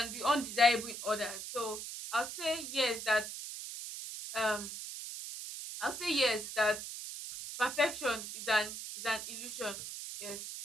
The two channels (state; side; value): noise; right; hiss, 8 dB below the sound